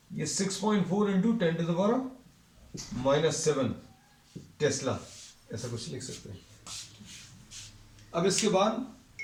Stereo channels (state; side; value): identical; both; correlation 1.00